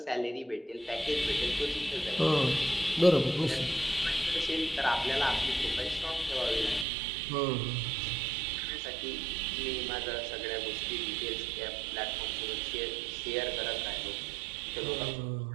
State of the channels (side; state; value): left; drops out; at 6.9 s